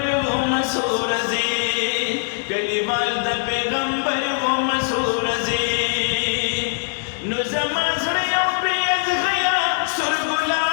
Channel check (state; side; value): silent; right; digital silence